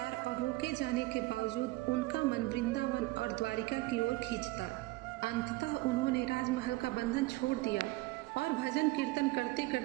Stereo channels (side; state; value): left; quieter; 20.2 dB